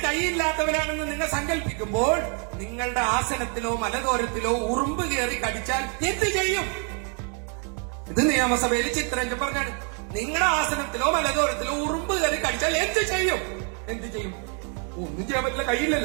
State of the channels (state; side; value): quieter; left; 39.6 dB